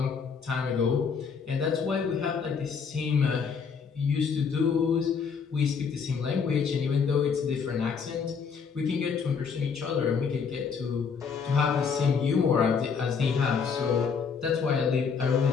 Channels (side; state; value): right; quieter; 6.0 dB